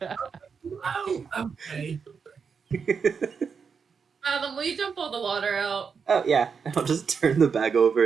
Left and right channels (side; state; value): left; quieter; 6.0 dB